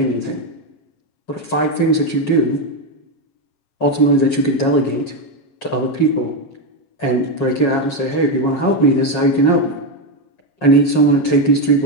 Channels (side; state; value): right; late; 7.3 ms